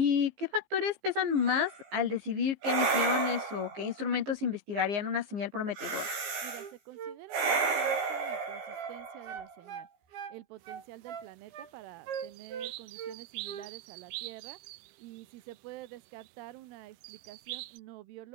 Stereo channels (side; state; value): left; late; 15 ms